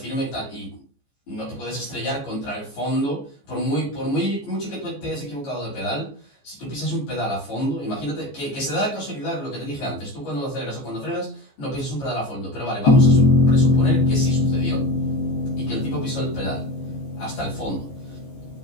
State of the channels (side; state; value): right; late; 14 ms